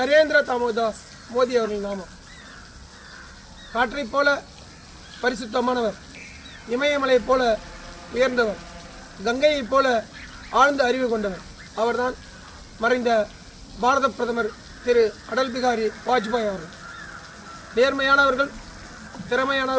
தாமோதாஸ் மோடி அவர்களின் நாமம். காற்றைப் போல பரிசுத்தமானவர், இமயமலையைப் போல உயர்ந்தவர், கங்கையைப் போல ஆழ்ந்த அறிவு கொண்டவர் அவர்தான் மறைந்த பாரத பிரதமர் திரு அடல் பிகாரி வாஜ்பாய் அவர்கள். நேர்மையானவர்கள்,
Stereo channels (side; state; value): both; identical; correlation 1.00